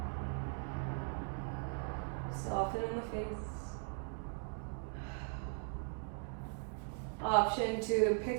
Soften in the face. Option to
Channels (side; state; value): left; silent; 51 dB below the other